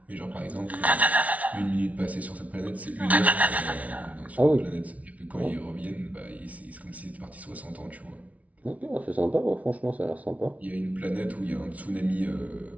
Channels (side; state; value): left; late; 0.068 ms